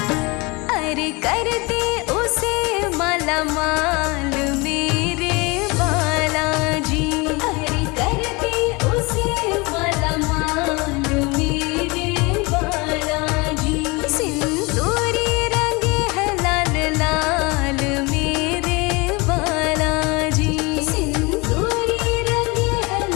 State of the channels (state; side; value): quieter; right; 26.2 dB